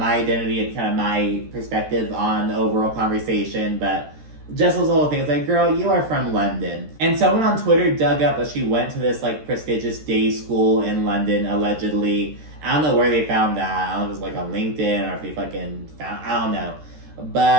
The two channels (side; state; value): left; late; 13 ms